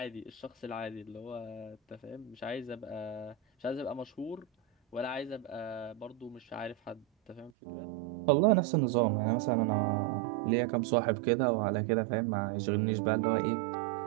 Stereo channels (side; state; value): left; drops out; at 7.5 s